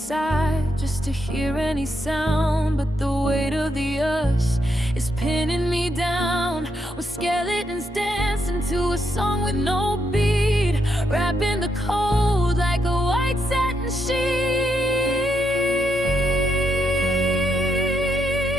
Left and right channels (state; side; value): normal; both; correlation 0.79